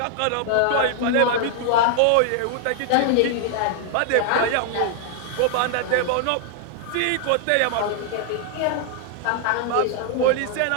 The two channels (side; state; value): both; different; correlation 0.00